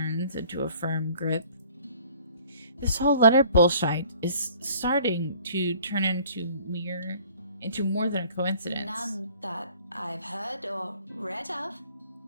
into a firm grip. This whole letter bullshit is starting to turn into more than a coincidence. None that I've heard or read of.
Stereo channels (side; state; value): both; inverted; correlation -0.54